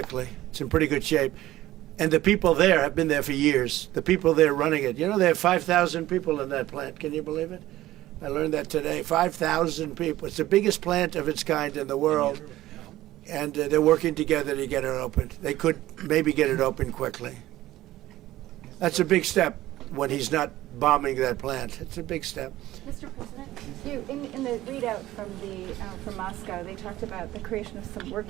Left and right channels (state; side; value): quieter; left; 15.5 dB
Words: It's in pretty good shape. And the people there have been there for years. The people there running it. You know, they have 5,000 people in that plant. Can you believe it? I learned that today. 5,000 people. It's the biggest plant of its kind in the world. And they're working together to get it opened. They could maybe get it open quickly. That's a big step when he's not bombing that plant. It's a big step. Mr. President, you in the readout from Moscow, they talked about the creation of some